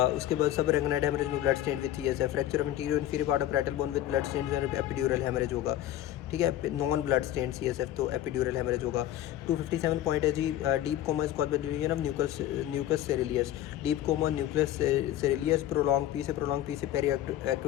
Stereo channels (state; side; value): quieter; right; 12.8 dB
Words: बाद sub arachnoid haemorrhage में blood stain with CSF, fracture of interior inferior part of parietal bone with blood stain and epidural haemorrhage होगा, ठीक है, non blood stain CSF तो epidural haemorrhage होगा। 257 point है जी, deep coma is caused by division of nucleus caeruleus, deep coma nucleus caeruleus, prolong पी से peri